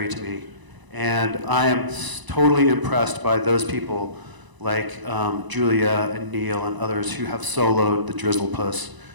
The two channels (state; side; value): late; left; 1.0 ms